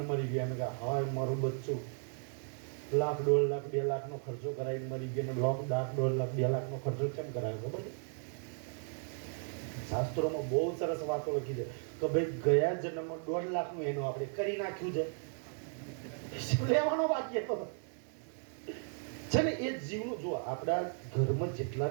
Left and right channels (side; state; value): left; silent; 54 dB below the other